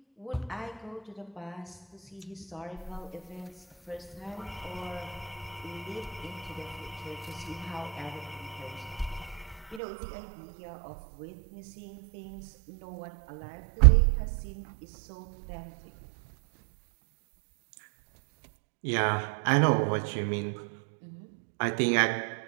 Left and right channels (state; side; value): drops out; left; at 9.8 s